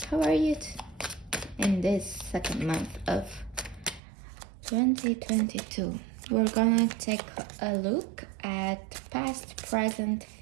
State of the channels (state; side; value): drops out; left; at 4.0 s